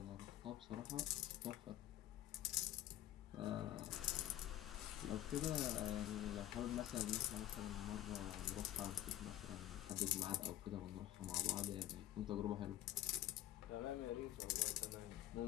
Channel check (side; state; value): right; quieter; 13.6 dB